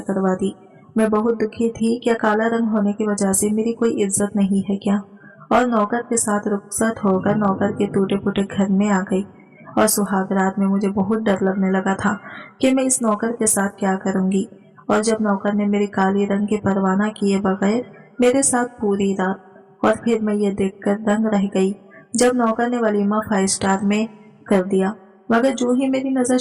करवा दी। मैं बहुत दुखी थी। क्या काला रंग होने की वजह से मेरी कोई इज्जत नहीं है क्या? और नौकर के साथ रुखसत होकर नौकर के टूटे फूटे घर में आ गई। और सुहाग रात में मुझे बहुत डर लगने लगा था कि मैं इस नौकर के साथ क्या करूंगी। और जब नौकर ने मेरी काली रंग की परवाह किए बगैर मेरे साथ पूरी रात, और फिर मैं ये देखकर दंग रह गई जब नौकर ने वलीमा 5 स्टार में कर दिया। मगर जो ही मेरी नजर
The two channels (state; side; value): identical; both; correlation 1.00